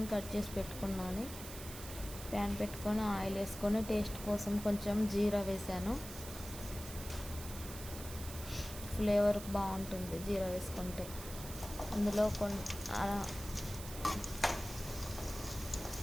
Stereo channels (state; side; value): noise; right; hiss, 11 dB below the sound